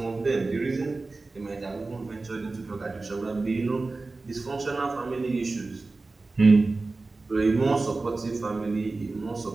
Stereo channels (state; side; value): quieter; left; 3.5 dB